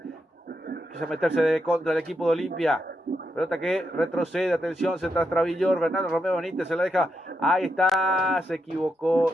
quiso meterse contra el equipo de Olimpia, pelota que retrocede, atención, se Travillor, Bernardo Romeo Benítez se la deja, ahí está, se equivocó,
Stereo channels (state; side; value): normal; both; correlation 0.83